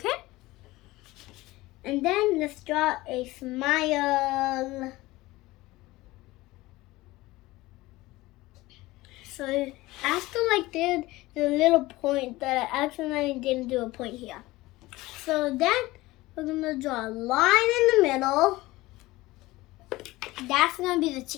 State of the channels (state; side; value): quieter; right; 19.3 dB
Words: And then let's draw a smile. So after like this, there's a little point that I accidentally didn't do a point here. So then we're gonna draw a line in the middle. That's gonna be the